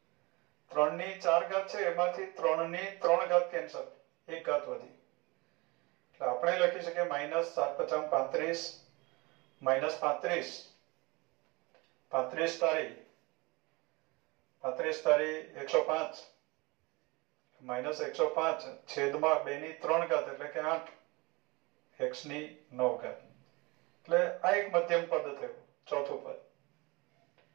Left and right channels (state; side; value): quieter; left; 25.2 dB